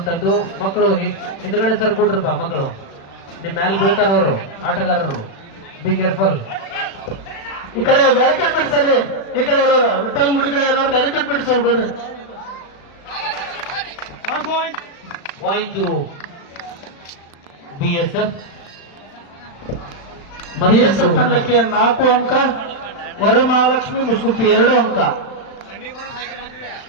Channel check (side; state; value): right; late; 36 ms